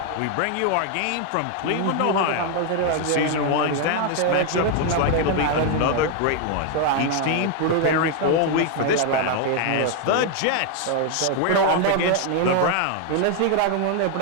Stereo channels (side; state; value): both; different; correlation 0.00